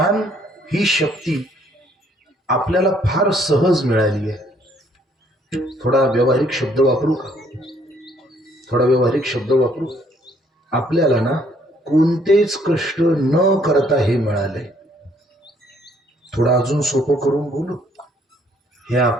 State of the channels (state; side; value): normal; both; correlation 0.65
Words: ही शक्ती आपल्याला फार सहज मिळाली आहे. थोडा व्यावहारिक शब्द वापरू का? थोडा व्यावहारिक शब्द वापरू. आपल्याला ना कोणतेच कष्ट न करता हे मिळाले. थोडं अजून सोपं करून बोलू, हे